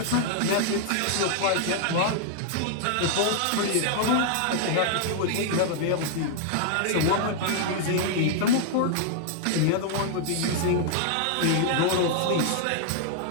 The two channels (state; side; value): different; both; correlation -0.01